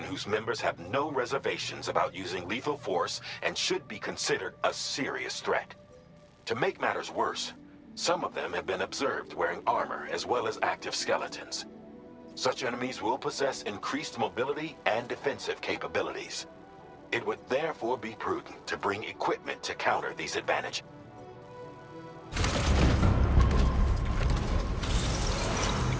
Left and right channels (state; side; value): identical; both; correlation 1.00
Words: whose members have no reservations about using lethal force and should be considered a serious threat. To make matters worse, some of them have been observed wearing armor as well as active skeletons. Such enemies will possess increased mobility and defensive capabilities. It would therefore be prudent to bring equipment to counter these advantages.